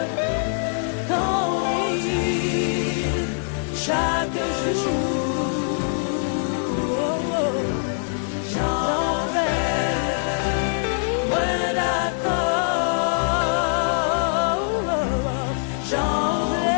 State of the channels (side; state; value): right; silent; digital silence